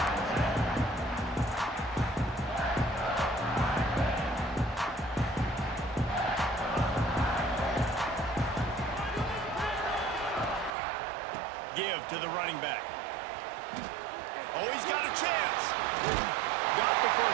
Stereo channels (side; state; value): left; drops out; at 10.7 s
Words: Give to the running back. Oh, he's got a chance. Got the